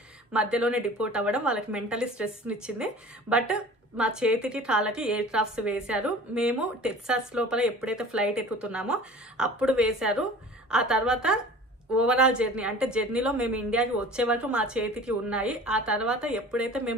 మధ్యలోనే డిపోర్ట్ అవ్వడం వాళ్ళకి మెంటల్లీ స్ట్రెస్ని ఇచ్చింది. బట్ మా చేతికి కాళ్ళకి ఎయిర్ క్రాఫ్ట్స్ వేశారు. మేము టెక్సాస్ లోపల ఎప్పుడైతే ఫ్లైట్ ఎక్కుతున్నామో అప్పుడు వేశారు. ఆ తర్వాత ఓవరాల్ జర్నీ అంటే జర్నీలో మేము ఇండియాకి వచ్చే వరకు మా చేతికి ఉన్నాయి. ఆ తర్వాత ఎప్పుడైతే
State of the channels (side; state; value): both; normal; correlation 0.42